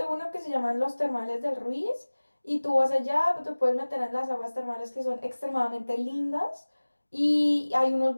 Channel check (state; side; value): inverted; both; correlation -1.00